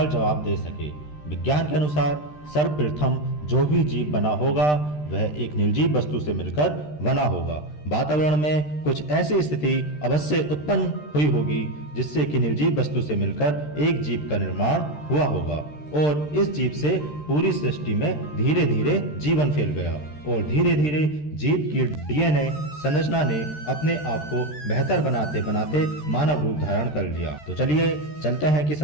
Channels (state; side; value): late; right; 13 ms